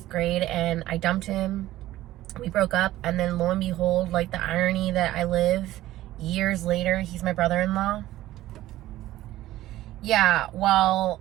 grade, and I dumped him. We broke up, and then lo and behold, like, the irony that I live, years later, he's my brother-in-law. Yeah, well,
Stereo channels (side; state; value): left; quieter; 15.2 dB